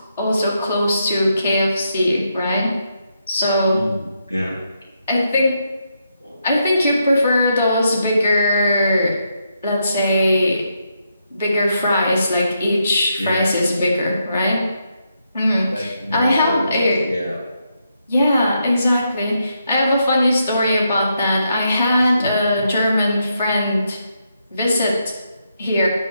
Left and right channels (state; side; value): inverted; both; correlation -0.80